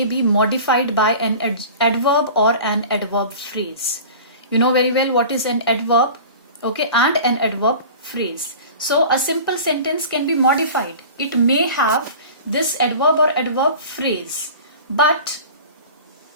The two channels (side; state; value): both; inverted; correlation -0.39